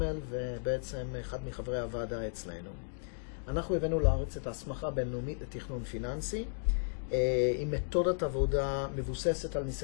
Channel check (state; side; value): silent; right; digital silence